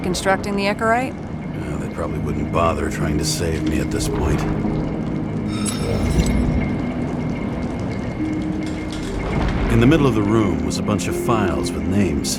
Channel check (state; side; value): identical; both; correlation 1.00